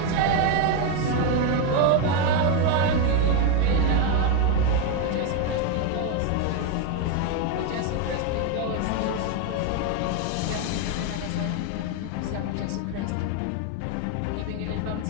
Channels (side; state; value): both; different; correlation 0.02